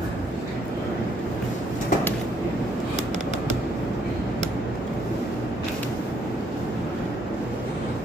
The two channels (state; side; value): normal; both; correlation 0.69